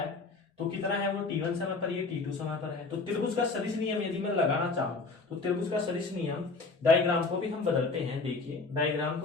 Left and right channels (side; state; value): right; quieter; 3.9 dB